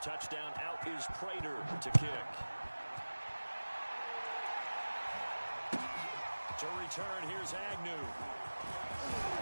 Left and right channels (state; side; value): inverted; both; correlation -1.00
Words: out is Prater to kick. To return, here's Agnew.